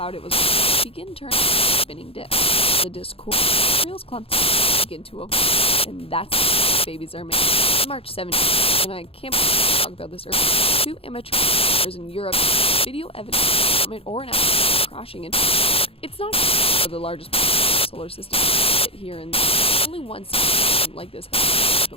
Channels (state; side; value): late; right; 0.27 ms